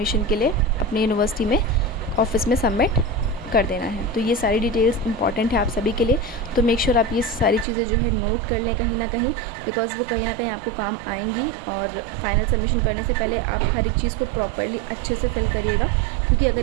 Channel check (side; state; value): left; drops out; at 7.7 s